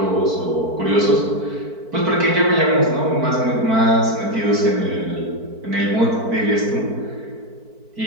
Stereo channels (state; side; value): late; left; 4.5 ms